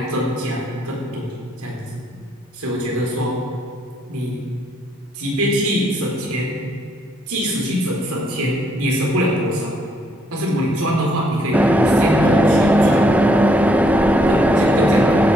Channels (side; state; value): both; normal; correlation 0.71